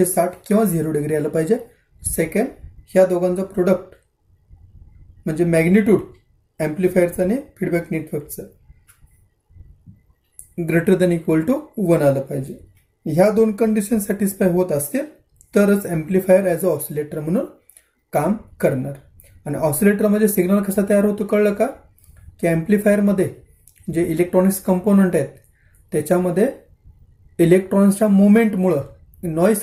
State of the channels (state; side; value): identical; both; correlation 1.00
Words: किंवा 0 डिग्री आलं पाहिजे. सेकंड, ह्या दोघांचं प्रोडक्ट म्हणजे मॅग्निट्यूड ॲम्प्लिफायरचं आणि फीडबॅक नेटवर्कचं ग्रेटर दॅन इक्वल टू 1 आलं पाहिजे. ह्या दोन कंडिशन सॅटिस्फाय होत असतील तरच ॲम्प्लिफायर ॲज अ ऑसिलेटर म्हणून काम करणार. आणि ऑसिलेटरमध्ये सिग्नल कसा तयार होतो कळलं का, की ॲम्प्लिफायरमध्ये जे इलेक्ट्रॉनिक्स कंपोनंट आहेत त्याच्यामध्ये इलेक्ट्रॉनिक्सच्या मुवमेंटमुळं नॉईज